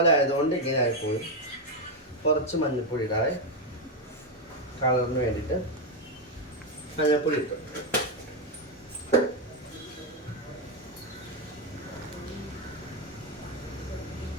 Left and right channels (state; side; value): normal; both; correlation 0.05